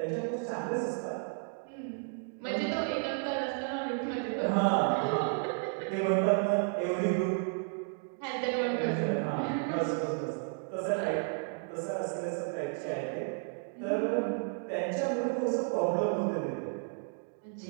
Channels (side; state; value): left; silent; 56 dB below the other